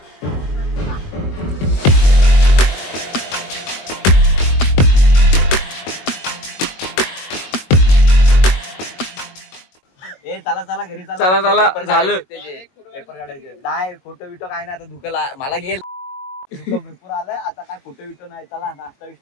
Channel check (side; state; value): right; late; 22 ms